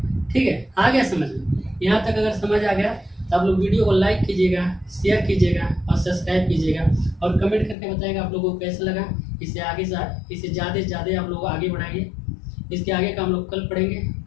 ठीक है। आ गया समझ में? यहाँ तक अगर समझ आ गया तो आप लोग वीडियो को लाइक कीजिएगा, शेयर कीजिएगा और सब्सक्राइब कीजिएगा और कमेंट करके बताइएगा आप लोगों को कैसा लगा। इसे आगे इसे ज़्यादा से ज़्यादा आप लोग आगे बढ़ाइए। इसके आगे का हम लोग कल पढ़ेंगे,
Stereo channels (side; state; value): right; drops out; at 7.8 s